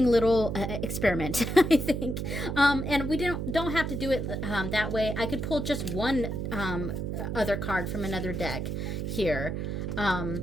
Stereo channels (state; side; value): noise; right; hum, 3 dB below the sound